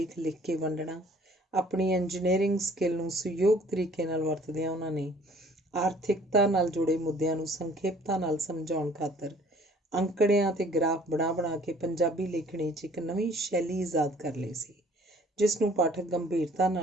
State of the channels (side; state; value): both; normal; correlation 0.55